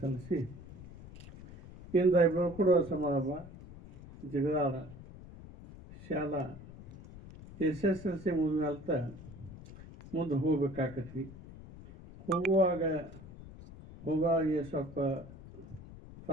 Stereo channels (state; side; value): noise; left; rumble, 16 dB below the sound